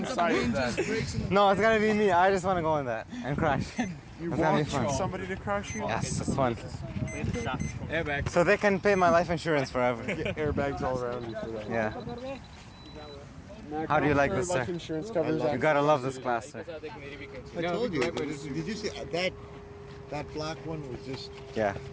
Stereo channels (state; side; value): identical; both; correlation 1.00